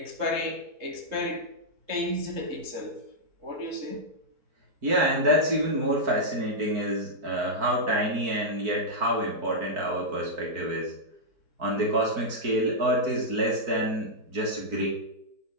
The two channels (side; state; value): left; late; 4.5 ms